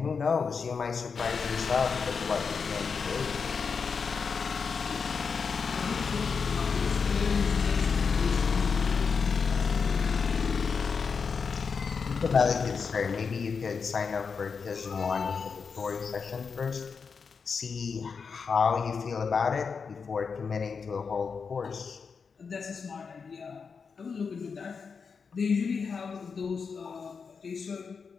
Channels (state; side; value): quieter; right; 5.5 dB